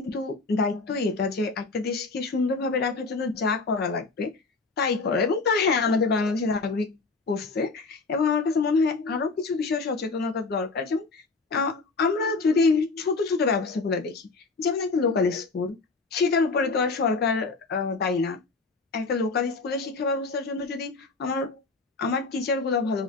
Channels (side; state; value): right; quieter; 3.9 dB